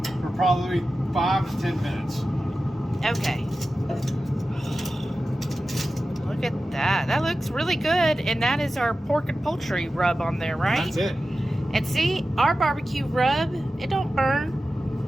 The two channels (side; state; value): both; normal; correlation 0.94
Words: for probably 5 to 10 minutes. Okay. Look at that. That looks really good. And that is our pork and poultry rub on there, right? That's it. And see, our barbecue rub, it don't